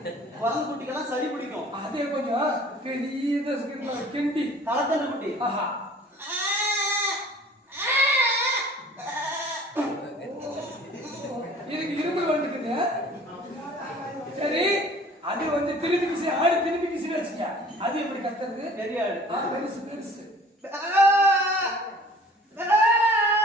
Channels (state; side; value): normal; both; correlation 0.49